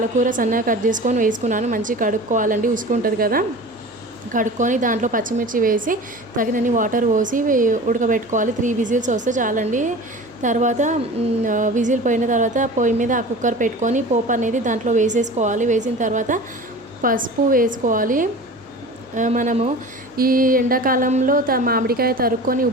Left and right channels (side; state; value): right; noise; hum, 30 dB below the sound